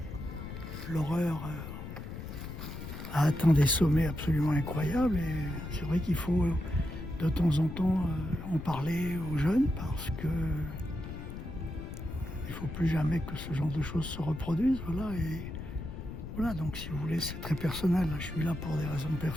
l'horreur a atteint des sommets absolument incroyables. Et c'est vrai qu'il faut de temps en temps en parler aux jeunes parce que il ne faut plus jamais que ce genre de choses se reproduisent. Voilà, et voilà, donc si vous voulez, c'est très personnel. Je suis là pour des raisons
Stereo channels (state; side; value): noise; left; rumble, 8 dB below the sound